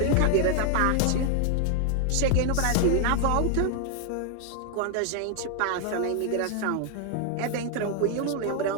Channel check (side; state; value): both; different; correlation 0.00